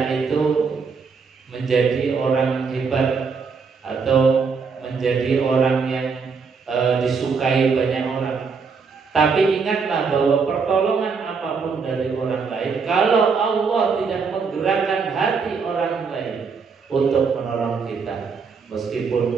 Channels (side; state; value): left; quieter; 5.3 dB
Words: itu menjadi orang hebat atau menjadi orang yang disukai banyak orang. Tapi ingatlah bahwa pertolongan apapun dari orang lain, kalau Allah tidak menggerakkan hati orang lain untuk menolong kita,